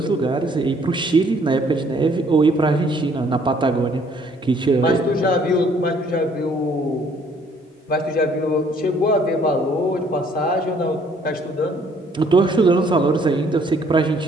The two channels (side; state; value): both; normal; correlation 0.62